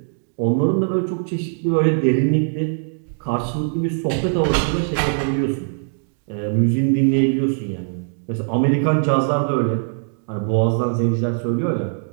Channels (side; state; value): left; silent; digital silence